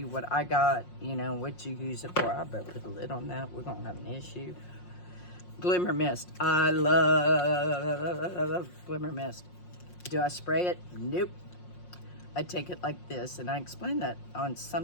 what I got, you know, what you use it for. I better put a lid on that. We're going to have an issue. Glimmer Mist. I love Glimmer Mist. Do I spray it? Nope. I take it like this, and I explained that on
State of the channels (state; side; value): late; right; 5.6 ms